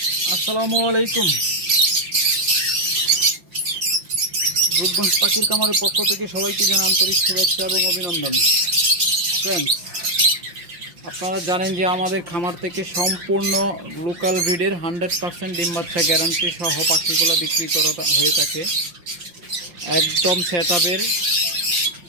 আসসালামু আলাইকুম। রূপগঞ্জ পাখির খামারের পক্ষ থেকে সবাইকে জানাই আন্তরিক শুভেচ্ছা এবং অভিনন্দন। ফ্রেন্ডস, আপনারা জানেন যে আমাদের খামার থেকে সম্পূর্ণ লোকাল ব্রিডের 100% ডিম বাচ্চা গ্যারান্টি সহ পাখিগুলো বিক্রি করা হয়ে থাকে। একদম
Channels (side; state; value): left; late; 5.7 ms